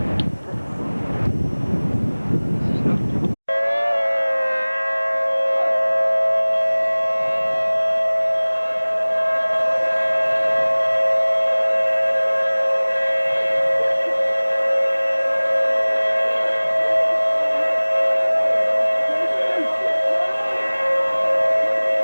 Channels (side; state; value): both; inverted; correlation -1.00